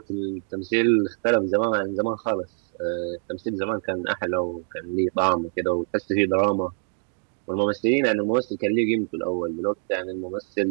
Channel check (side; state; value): left; silent; 62 dB below the other